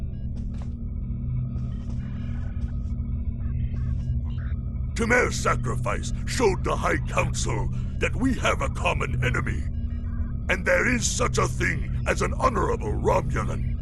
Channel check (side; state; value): both; identical; correlation 1.00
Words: Tamer's sacrifice showed the High Council that we have a common enemy. And there is such a thing as an honorable Romulan.